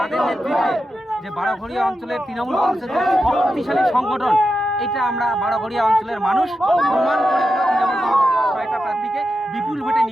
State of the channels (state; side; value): normal; both; correlation 0.89